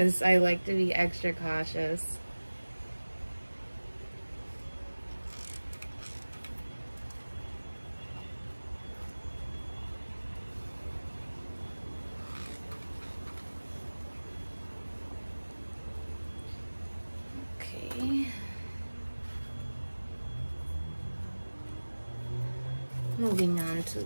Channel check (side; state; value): both; inverted; correlation -1.00